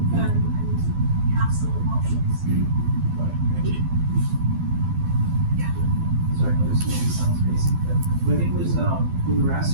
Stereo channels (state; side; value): late; left; 12 ms